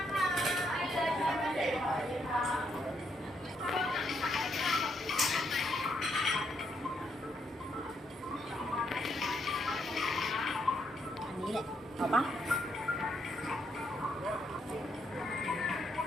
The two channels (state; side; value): normal; both; correlation 0.76